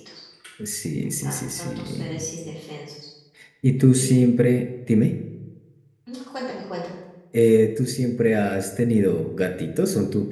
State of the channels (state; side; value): identical; both; correlation 1.00